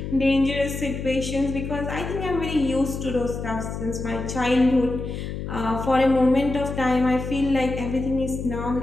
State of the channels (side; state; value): left; noise; hum, 6 dB below the sound